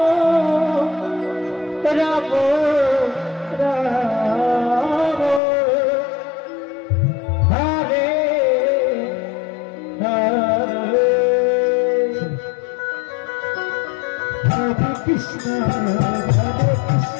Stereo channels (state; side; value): drops out; right; at 5.4 s